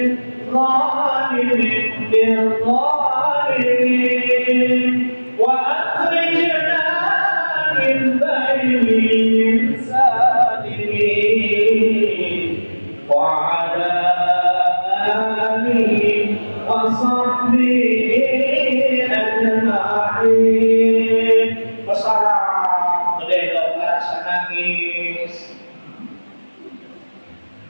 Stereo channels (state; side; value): inverted; both; correlation -1.00